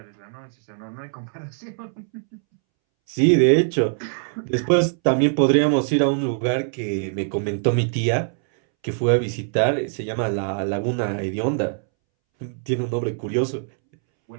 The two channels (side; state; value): left; silent; 64 dB below the other